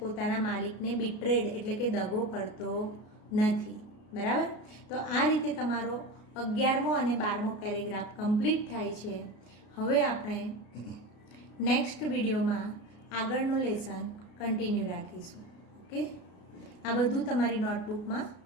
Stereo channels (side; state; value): right; late; 33 ms